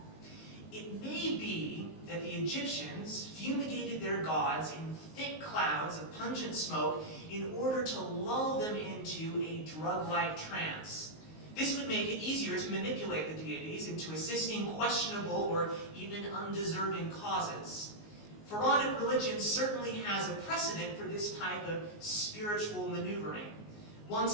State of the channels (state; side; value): late; right; 19 ms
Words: It may be that the Egyptians fumigated their gods in thick clouds of pungent smoke in order to lull them into a drug-like trance. This would make it easier to manipulate the deities into assisting questionable or even undeserving causes. Pharaonic religion certainly has a precedent for this type of spiritual maneuvering. One